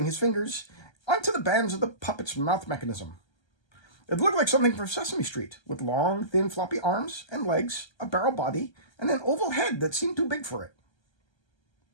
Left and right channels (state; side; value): late; right; 1.3 ms